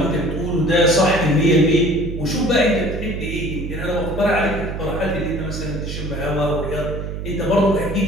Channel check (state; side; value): noise; right; hum, 6 dB below the sound